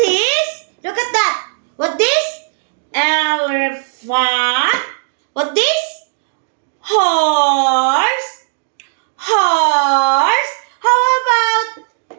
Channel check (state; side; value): silent; left; digital silence